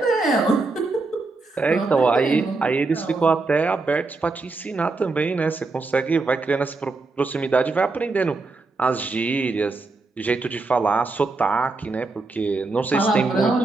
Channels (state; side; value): quieter; left; 3.6 dB